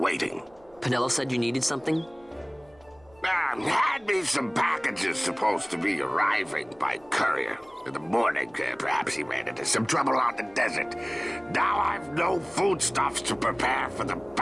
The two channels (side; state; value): right; noise; hum, 29 dB below the sound